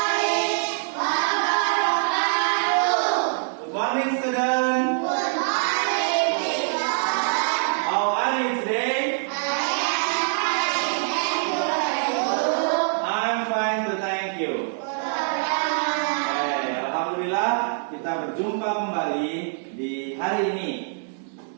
wabarakatuh. Good morning, student. Good morning, teacher. How are you today? I am fine, thank you. I'm fine, to thank you. Alhamdulillah, kita berjumpa kembali di hari ini.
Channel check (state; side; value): silent; left; digital silence